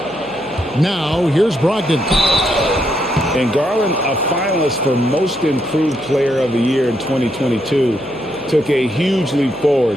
Now, here's Brogdon. And Garland, a finalist for Most Improved Player of the Year in 2022, took a huge leap forward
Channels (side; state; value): right; noise; hum, 25 dB below the sound